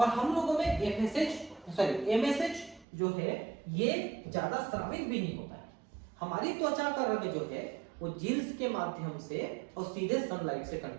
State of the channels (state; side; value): drops out; left; at 2.9 s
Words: हम लोगों में MSH जो है ये ज्यादा स्रावित भी नहीं होता है। हमारी त्वचा का रंग जो है वो जीन्स के माध्यम से और सीधे सनलाइट से